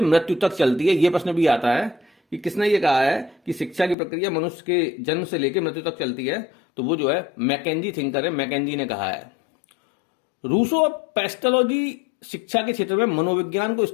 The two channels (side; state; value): right; drops out; at 4.0 s